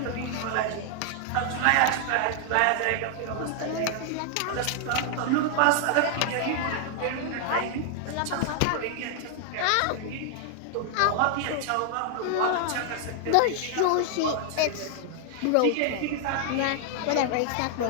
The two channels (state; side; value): different; both; correlation 0.00